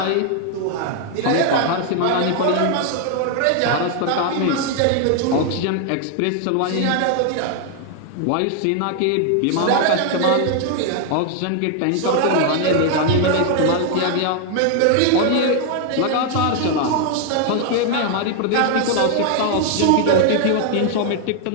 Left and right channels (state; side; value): different; both; correlation 0.00